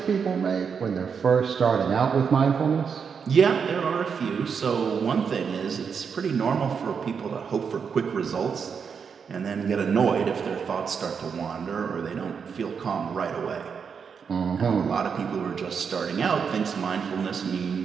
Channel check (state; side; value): quieter; left; 6.4 dB